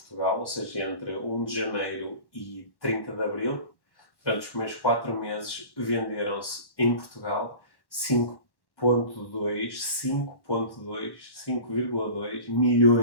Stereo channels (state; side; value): late; right; 1.1 ms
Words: ou seja, entre 1 de janeiro e 30 de abril, durante os primeiros 4 meses venderam-se em Portugal 5,2